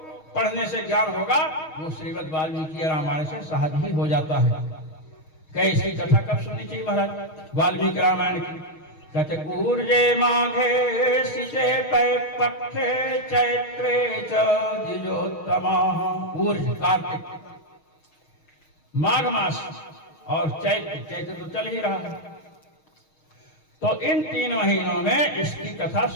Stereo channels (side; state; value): right; late; 6.4 ms